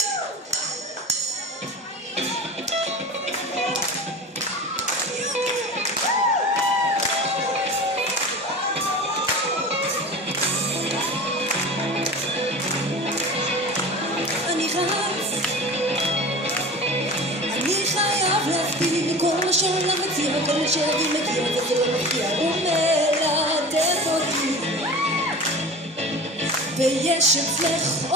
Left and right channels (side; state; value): both; normal; correlation 0.34